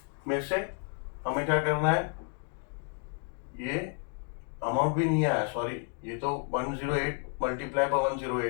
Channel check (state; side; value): quieter; right; 39.4 dB